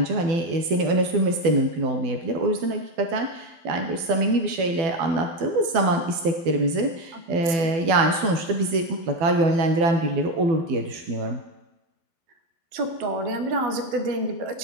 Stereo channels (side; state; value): left; late; 12 ms